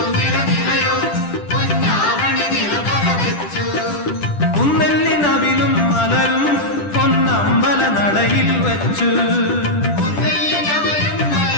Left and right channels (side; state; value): right; late; 10 ms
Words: കുന്നെല്ലിനവിലും മലരും പൊന്നമ്പല നടയിൽ വെച്ചു.